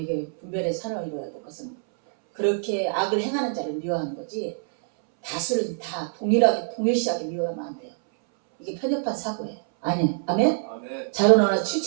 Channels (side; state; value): left; silent; 62 dB below the other